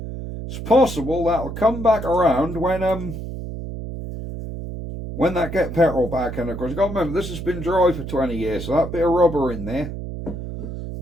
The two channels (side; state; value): right; noise; hum, 8 dB below the sound